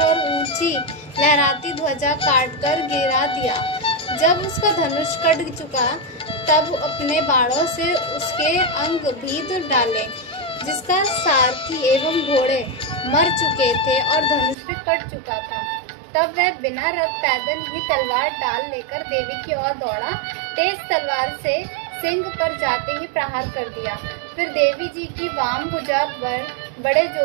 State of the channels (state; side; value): drops out; left; at 14.6 s